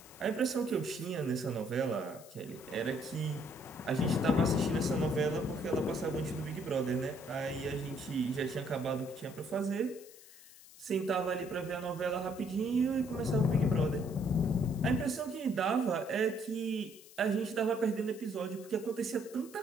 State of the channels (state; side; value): noise; left; hiss, 20 dB below the sound